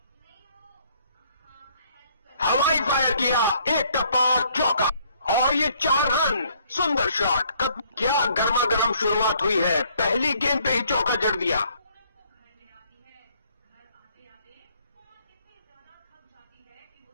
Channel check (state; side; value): inverted; both; correlation -0.63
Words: हवाई फायर किया, एक टप्पा चौका और ये 4 रन। सुंदर शॉट। क्या गर्मा गर्म शुरुआत हुई है, पहली गेंद पे ही चौका जड़ दिया।